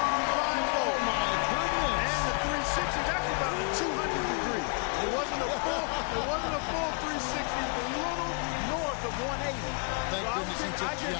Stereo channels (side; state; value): right; quieter; 38.4 dB